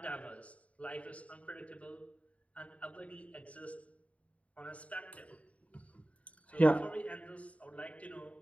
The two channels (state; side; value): late; right; 0.066 ms